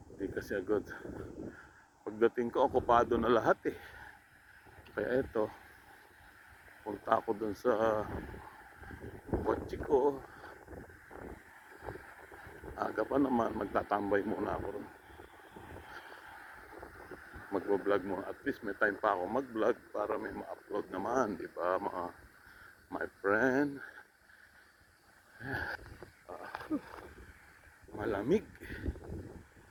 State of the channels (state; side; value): identical; both; correlation 1.00